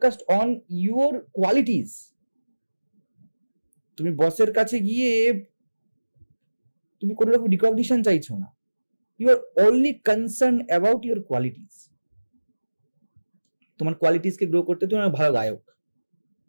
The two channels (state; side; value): inverted; both; correlation -1.00